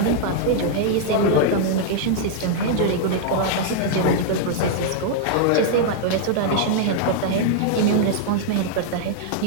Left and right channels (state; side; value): different; both; correlation -0.01